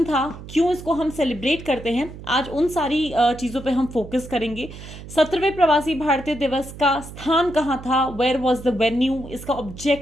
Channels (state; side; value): noise; right; hum, 14 dB below the sound